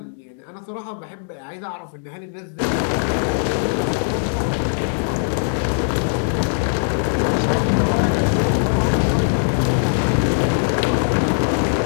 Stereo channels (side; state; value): right; silent; digital silence